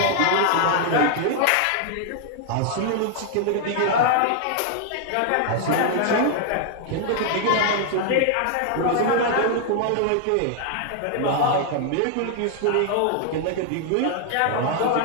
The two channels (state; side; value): different; both; correlation 0.00